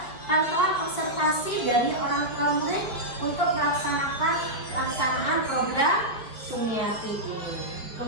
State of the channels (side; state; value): right; late; 4.7 ms